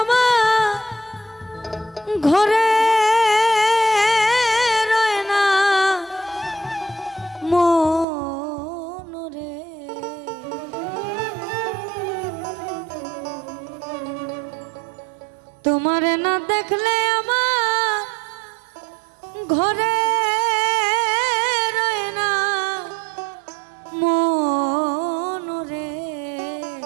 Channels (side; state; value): left; drops out; at 8.1 s